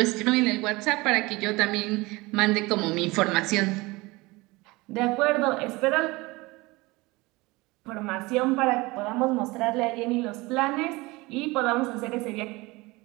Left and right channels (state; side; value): quieter; left; 22.6 dB